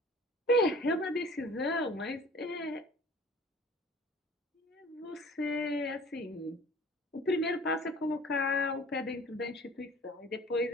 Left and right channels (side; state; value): both; normal; correlation 0.47